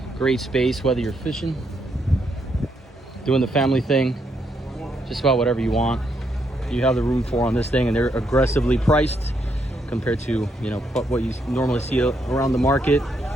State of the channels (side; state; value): both; normal; correlation 0.77